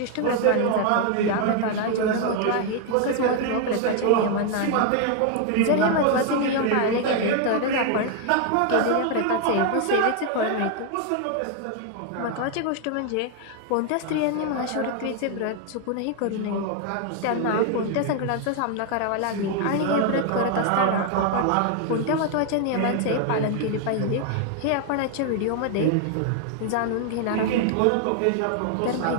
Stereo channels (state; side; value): different; both; correlation 0.00